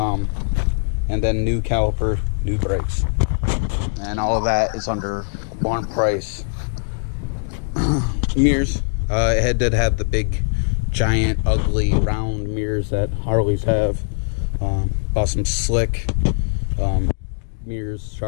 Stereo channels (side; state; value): right; silent; digital silence